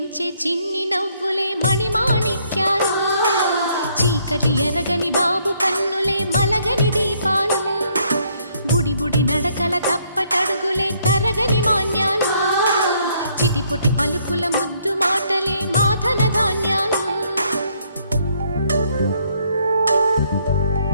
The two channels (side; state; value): both; inverted; correlation -0.68